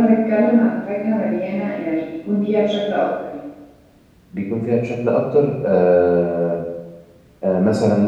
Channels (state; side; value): identical; both; correlation 1.00